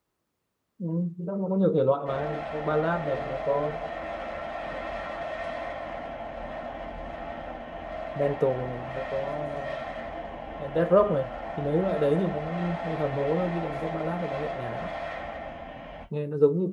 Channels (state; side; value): identical; both; correlation 1.00